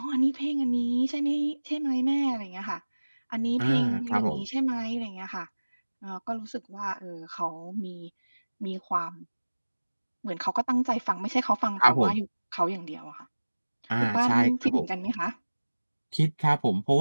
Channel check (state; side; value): inverted; both; correlation -1.00